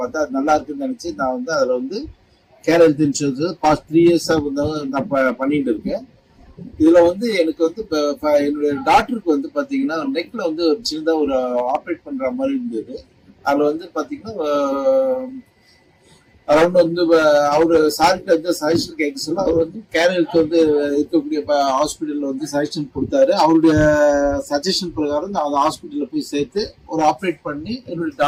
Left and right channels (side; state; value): both; identical; correlation 1.00